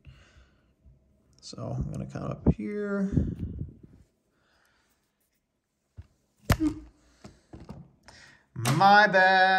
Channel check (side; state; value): both; identical; correlation 1.00